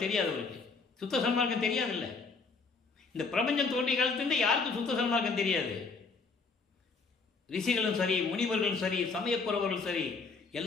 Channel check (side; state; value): right; quieter; 4.4 dB